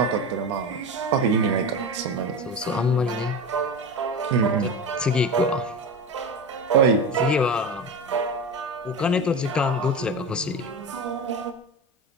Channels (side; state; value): both; normal; correlation 0.24